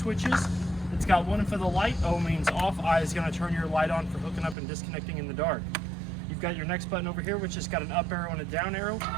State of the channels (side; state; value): left; drops out; at 4.5 s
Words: It's got one for the light. O means off. I is gonna turn your light on for hooking up and disconnecting in the dark. You've got your next button over here, which has got an up arrow and a down arrow.